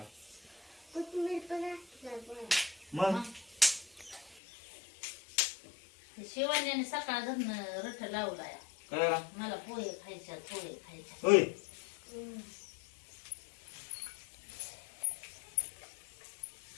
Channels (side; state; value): right; drops out; at 4.4 s